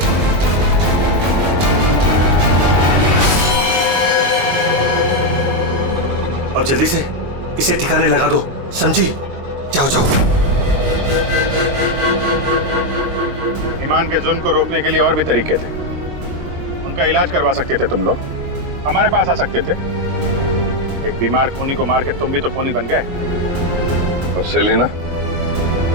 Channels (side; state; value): left; late; 22 ms